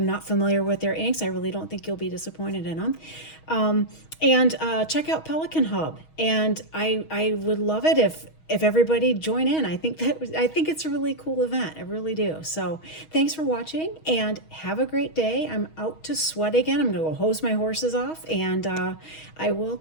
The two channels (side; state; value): right; late; 6.3 ms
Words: not familiar with their inks. I really don't think you'll be disappointed in them. And check out Pelikan Hub. And I would love it if everybody join in. I think it's a really cool event. I really do. So thanks for watching and have a great day. I'm out to sweat again. I'm gonna go hose my horses off, and I